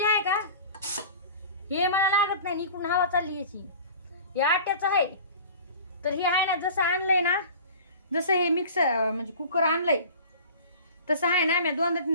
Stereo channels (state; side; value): inverted; both; correlation -0.41